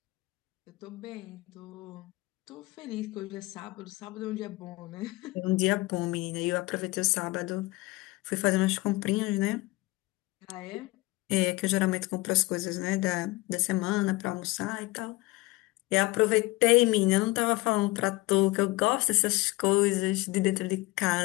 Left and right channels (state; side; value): quieter; right; 21.2 dB